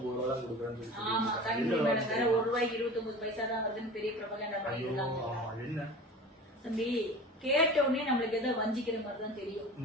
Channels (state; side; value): normal; both; correlation 0.37